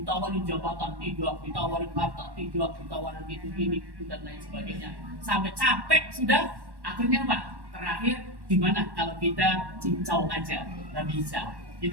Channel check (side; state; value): left; late; 1.1 ms